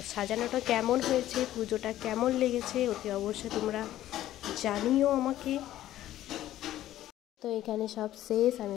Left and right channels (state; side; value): quieter; right; 13.5 dB